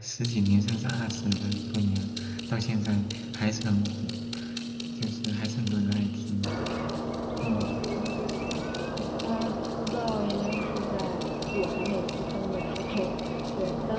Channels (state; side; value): identical; both; correlation 1.00